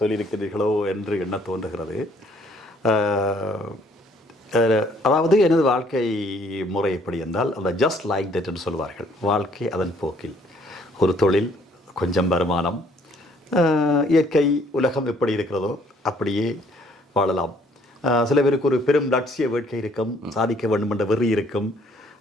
என்று எண்ண தோன்றுகிறது. அதாவது எனது வாழ்க்கை முறை எப்படி என்றால், அந்த ஜஸ்ட் லைக் தட் என்று சொல்வார்கள். வாழ்க்கை அதன் போக்கில், ஒரு தொழில், கொஞ்சம் வருமானம், இயற்கை உலகம் எப்படி இருக்கிறதோ அப்படியே வாழலாம். சில பேருக்கு ஒரு பெரும் லட்சிய வேட்கை இருக்கும், சாதிக்க வேண்டும் என்ற வெறி இருக்கும்.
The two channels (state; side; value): normal; both; correlation 0.63